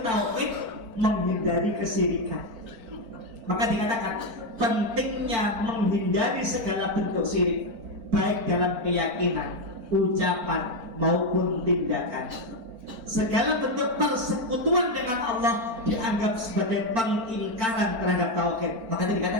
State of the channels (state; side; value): late; left; 4.5 ms